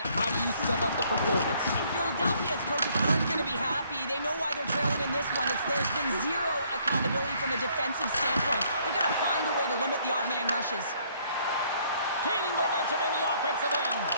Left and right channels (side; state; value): both; inverted; correlation -0.65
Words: How do you sum up the performance? Philadelphia's coaches aren't going to be happy. They know why they're trailing in this one. There's been zero accountability from a defensive standpoint. They've got to find a way to limit the odd man rushes. Gaining momentum in the offensive end.